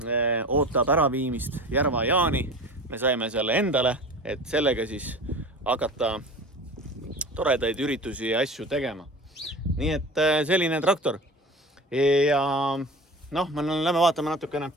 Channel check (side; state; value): both; normal; correlation 0.36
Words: ootab äraviimist Järva-Jaani. Me saime selle endale, et sellega siis hakata toredaid üritusi ja asju tegema. Nii et selline traktor. Ja noh, me lähme vaatame natukene